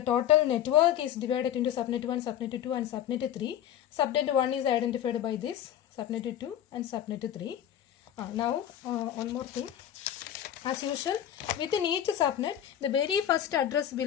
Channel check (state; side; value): quieter; right; 10.6 dB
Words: total network is divided into subnet 1, subnet 2 and subnet 3. Subnet 1 is identified by this, subnet 2 and subnet 3. Now one more thing. As usual, within each subnet, the very first address